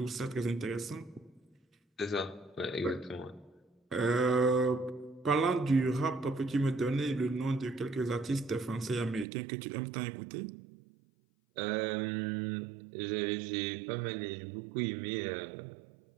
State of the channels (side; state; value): left; drops out; at 9.2 s